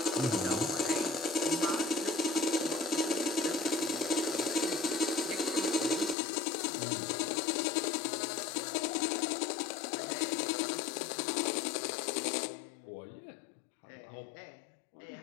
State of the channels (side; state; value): right; drops out; at 6.2 s